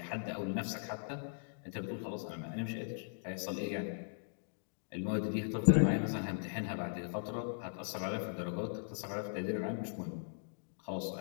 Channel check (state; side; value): silent; right; digital silence